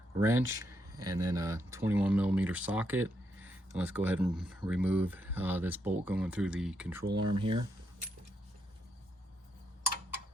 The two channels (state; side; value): normal; both; correlation 0.79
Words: wrench and then a 21mm socket. And let's go ahead and remove this bolt going through the control arm here.